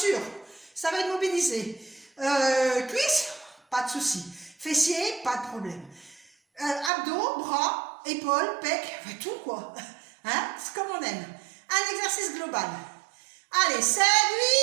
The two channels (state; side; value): drops out; left; at 6.9 s